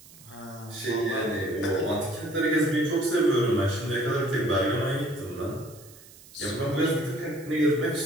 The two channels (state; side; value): noise; right; hiss, 22 dB below the sound